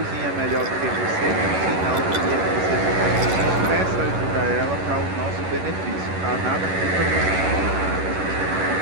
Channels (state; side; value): late; left; 11 ms